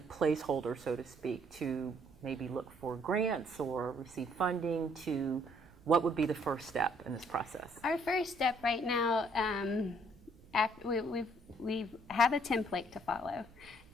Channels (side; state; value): right; noise; rumble, 24 dB below the sound